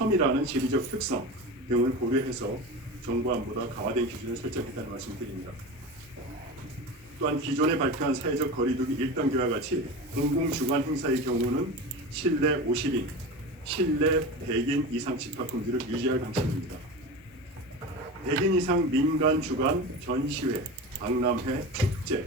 지리적 특성 등을 고려해서 정부안보다 강화된 기준을 설정했다는 말씀드립니다. 또한 기존에 발표한 사회적 거리두기 1단계와 같이 공공주관 행사의 경우는 실내 50인, 실내 100인 이상 집합 금지를 유지할 방침입니다. 100인 이상 민간 주관 전시회, 박람회,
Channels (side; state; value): both; normal; correlation 0.28